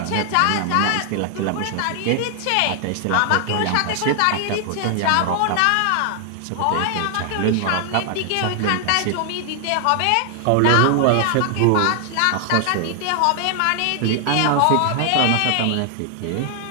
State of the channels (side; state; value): both; different; correlation 0.00